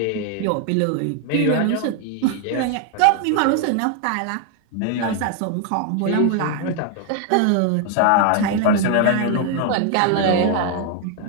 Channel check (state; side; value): different; both; correlation 0.00